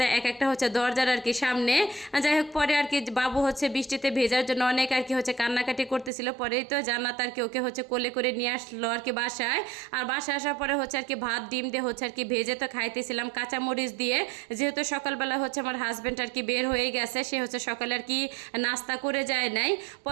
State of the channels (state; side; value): drops out; left; at 6.1 s